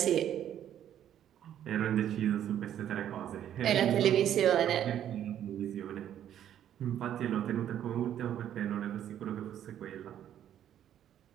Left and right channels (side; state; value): left; quieter; 10.6 dB